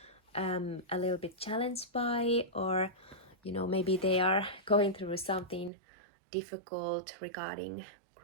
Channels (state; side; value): drops out; left; at 5.7 s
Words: a little bit challenged by, or maybe they are going through something difficult regarding